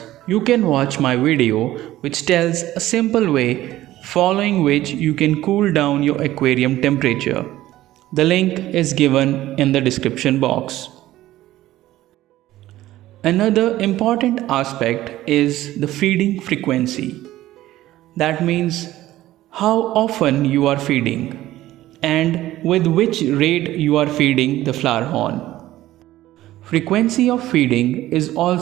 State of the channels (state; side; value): quieter; left; 15.1 dB